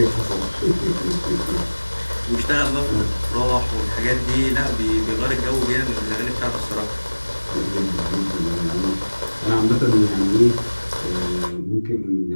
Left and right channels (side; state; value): both; inverted; correlation -1.00